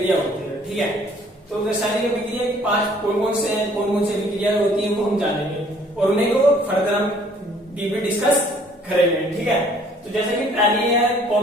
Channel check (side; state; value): both; normal; correlation 0.58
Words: होती है, ठीक है। तो रासायनिक अभिक्रिया के 5 कौन कौन से हैं, कौन कौन सी अभिक्रिया होती है, वो हम जानेंगे और उन्हें को फर्दर हम डीपली डिस्कस करेंगे, ठीक है। तो जैसे कि पहली है